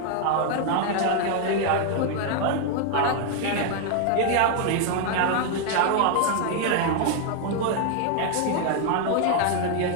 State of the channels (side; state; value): both; different; correlation 0.00